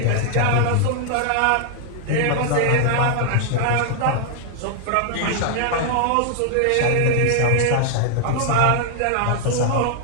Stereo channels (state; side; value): different; both; correlation 0.00